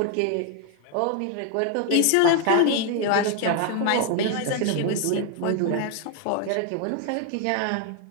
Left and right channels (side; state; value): both; different; correlation 0.00